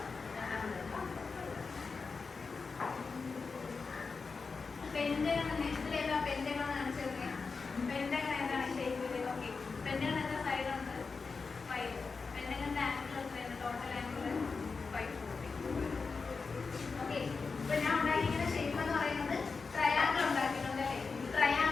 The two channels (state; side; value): quieter; right; 4.6 dB